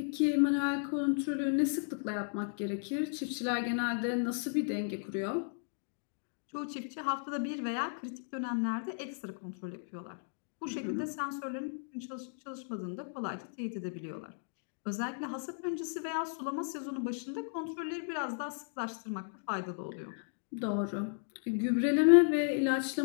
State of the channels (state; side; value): silent; right; digital silence